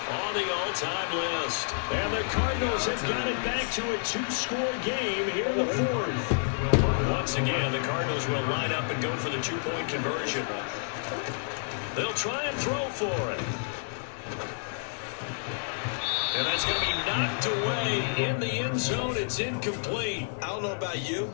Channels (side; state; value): right; silent; 58 dB below the other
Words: on the all-time list. And the Cardinals have got it back to a 2-score game here in the 4th. Once again, the Cardinals will line up and go for the 2-point conversion. They'll try and throw for it. And that's going to be knocked away in the end zone. It's incomplete. I don't know about you,